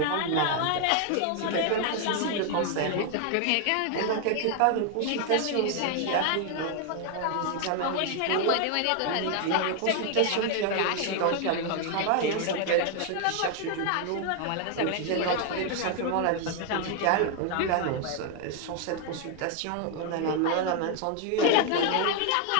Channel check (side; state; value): both; different; correlation 0.00